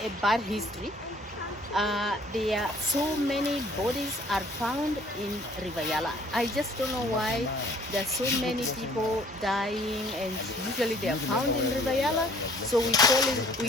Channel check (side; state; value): both; normal; correlation 0.56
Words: bad history. There are so many bodies are found in River Yala. I just don't know why there are so many people dying, and usually they are found in River Yala. So we